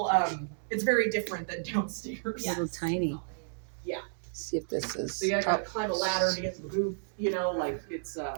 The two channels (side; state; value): left; silent; digital silence